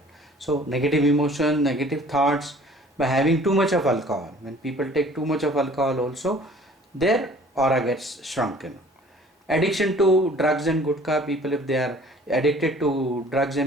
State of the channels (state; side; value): normal; both; correlation 0.52